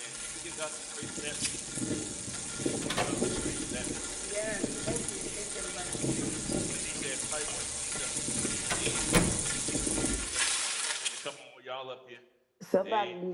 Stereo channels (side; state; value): both; identical; correlation 1.00